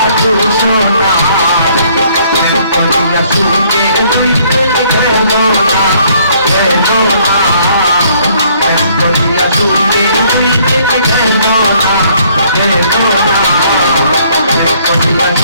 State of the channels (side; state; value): both; inverted; correlation -0.63